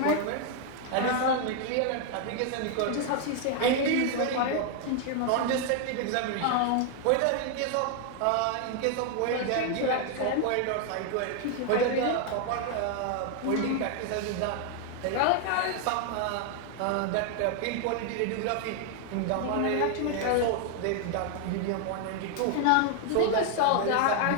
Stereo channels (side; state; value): both; different; correlation 0.00